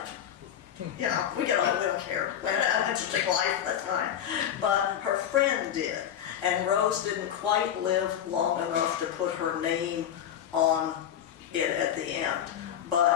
it. You know, we don't care. We had an interesting life at that time. But her friend did. And Rose didn't quite live long enough to put her name on it at the end.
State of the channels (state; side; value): quieter; right; 9.9 dB